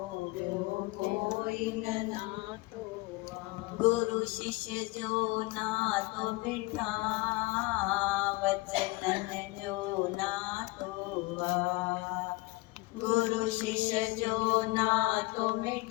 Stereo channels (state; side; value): quieter; right; 23.2 dB